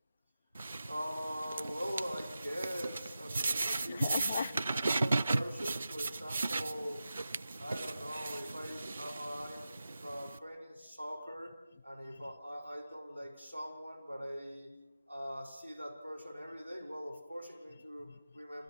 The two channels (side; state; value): both; inverted; correlation -0.92